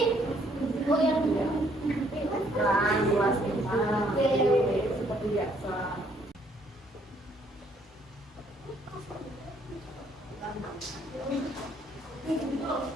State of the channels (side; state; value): both; normal; correlation 0.66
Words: Oh yang Kelas 25, seperti biasa.